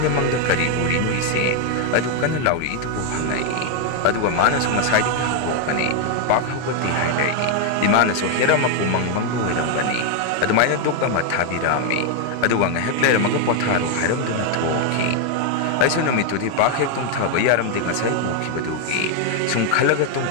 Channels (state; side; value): different; both; correlation 0.00